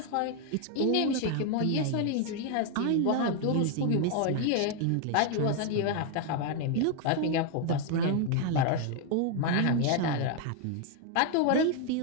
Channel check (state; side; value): different; both; correlation 0.01